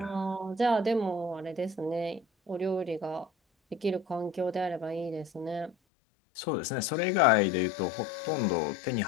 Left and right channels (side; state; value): right; drops out; at 5.8 s